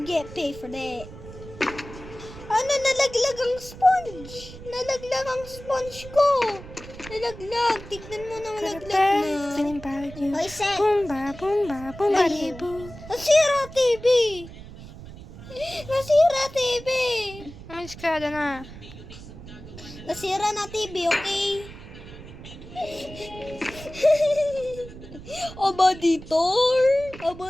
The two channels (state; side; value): noise; right; rumble, 15 dB below the sound